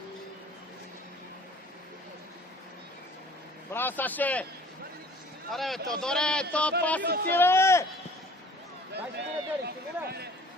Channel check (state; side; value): normal; both; correlation 0.50